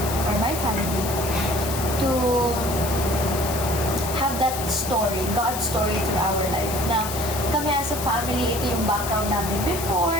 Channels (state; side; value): noise; left; hiss, 7 dB below the sound